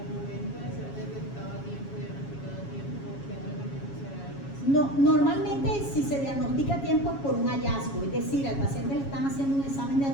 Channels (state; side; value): late; right; 7.2 ms